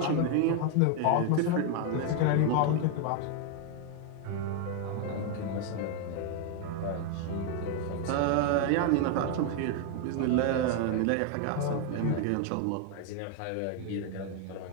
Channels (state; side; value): different; both; correlation 0.01